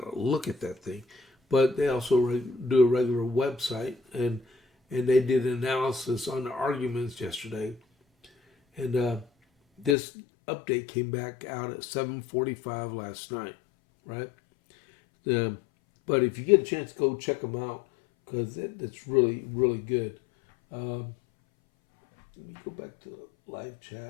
to look at that thing. But they also do a regular website, and they did an analysis on the arguments yesterday. And this update came back out at 7:45 last night, right? But if you get a chance, go check them out, because it's really, really good. Let me go back to the live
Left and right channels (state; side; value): drops out; right; at 10.0 s